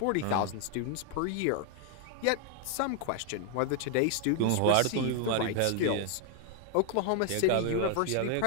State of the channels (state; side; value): different; both; correlation 0.00